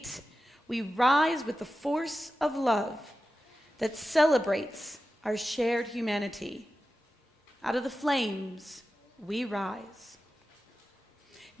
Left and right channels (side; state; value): both; normal; correlation 0.93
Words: we rise with the force of love that celebrates our shared humanity. Out of the flames, we rise.